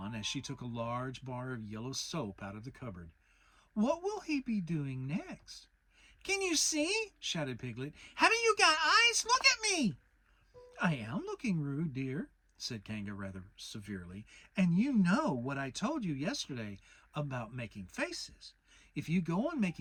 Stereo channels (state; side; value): identical; both; correlation 1.00